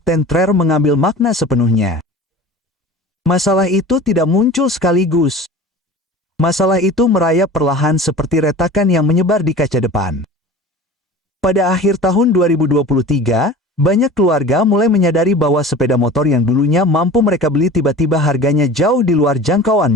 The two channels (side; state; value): both; normal; correlation 0.38